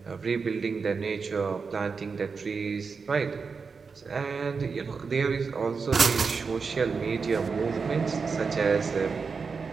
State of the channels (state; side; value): quieter; left; 5.1 dB